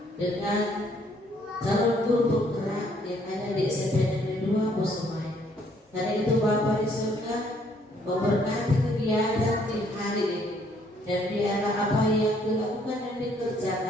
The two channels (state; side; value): normal; both; correlation 0.66